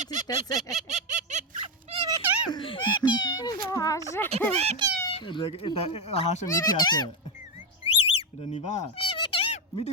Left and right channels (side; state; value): both; normal; correlation 0.08